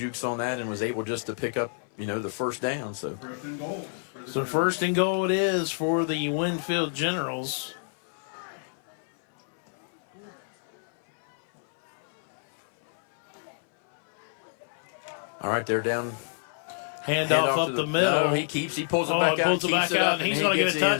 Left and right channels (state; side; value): silent; right; 59 dB below the other